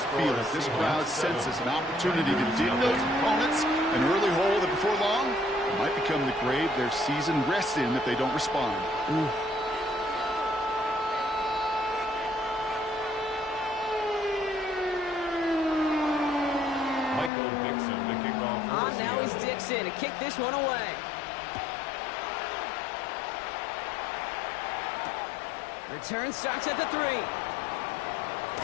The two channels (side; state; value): right; drops out; at 17.3 s